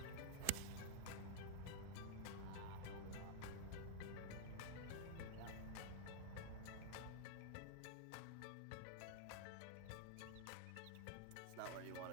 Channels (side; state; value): both; different; correlation -0.01